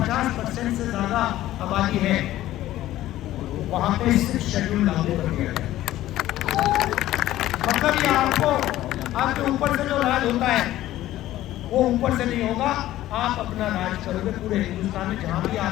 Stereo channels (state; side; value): quieter; right; 14.5 dB